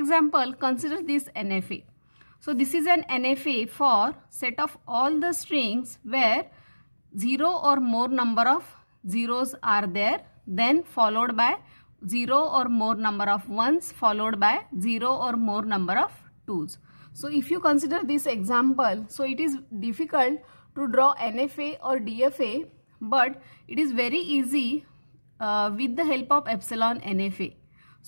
consider this NFA. So this is an NFA for set of all the strings where 0 or more number of zeros are there, then followed by 0 or more number of ones, followed by 0 or more number of twos. So if you consider this example, so it is difficult to draw NFA or DFA, but it is very easy with the help of epsilon NFA.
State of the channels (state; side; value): inverted; both; correlation -1.00